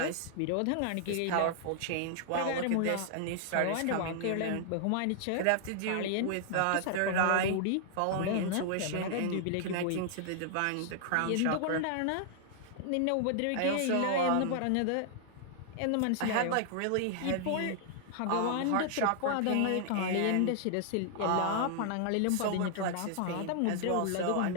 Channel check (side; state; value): both; different; correlation -0.01